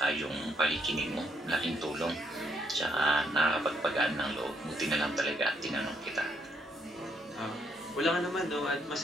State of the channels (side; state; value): both; normal; correlation 0.73